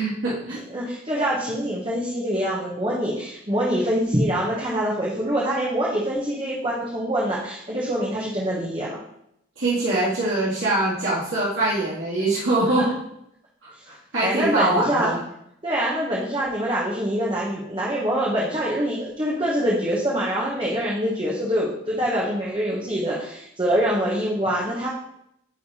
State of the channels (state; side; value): normal; both; correlation 0.51